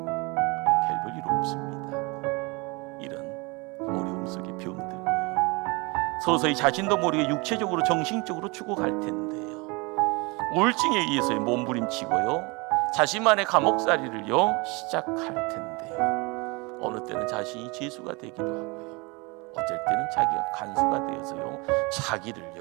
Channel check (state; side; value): quieter; left; 27.4 dB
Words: 일 없습니다. 이런 어려움 속에 병들고요, 서서히 자신도 모르게 육체적으로 정신적으로 죽어갈 텐데요, 우울증에 의해서 몸부림치고요, 자신만의 감옥살이를요 시작할 텐데요, 어느 때는 자신이 죄수가 되기도 하고요, 어쩔 때는 자기가 간수가 되어서요